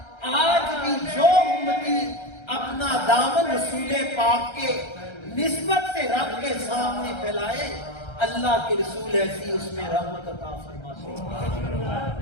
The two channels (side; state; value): right; late; 1.3 ms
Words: آج بھی جو امتی اپنا دامن رسول پاک کے نسبت سے رب کے سامنے پھیلائے، اللہ کے رسول ایسی اس میں رحمت عطا فرماتے